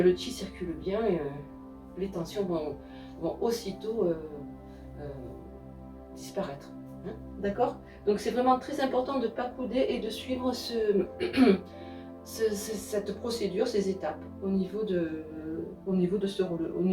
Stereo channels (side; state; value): both; identical; correlation 1.00